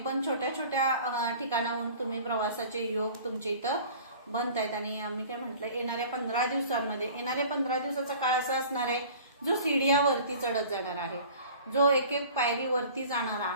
छोट्या छोट्या ठिकाणाहून तुम्ही प्रवासाचे योग तुमचे इथं बनतायत. आणि आम्ही काय म्हटलं येणाऱ्या 15 दिवसांमध्ये येणाऱ्या 15 दिवसाचा काळ असा असणार आहे जो सीडीयावरती चढत जाणार आहे, जो एक एक पायरी वरती जाणार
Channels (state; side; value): inverted; both; correlation -0.45